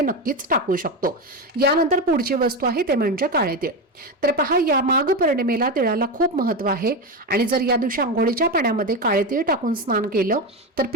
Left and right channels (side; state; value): both; normal; correlation 0.16